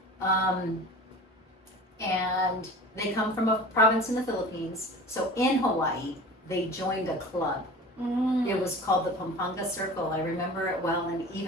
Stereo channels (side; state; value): both; normal; correlation 0.38